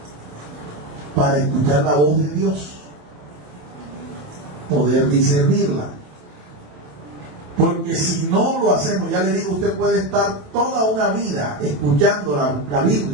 para escuchar la voz de Dios, poder discernirla. Porque si no lo hacemos, ya le digo, usted puede estar toda una vida escuchando la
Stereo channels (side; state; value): left; late; 27 ms